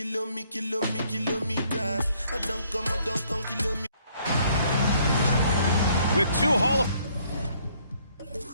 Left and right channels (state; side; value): inverted; both; correlation -0.65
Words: I don't come, kilometers. With 2 Hall of